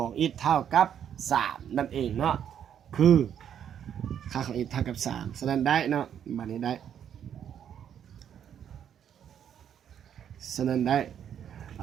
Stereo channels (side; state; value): left; quieter; 9.1 dB